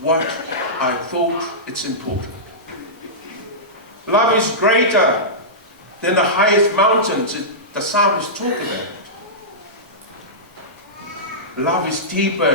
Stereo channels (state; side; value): normal; both; correlation -0.16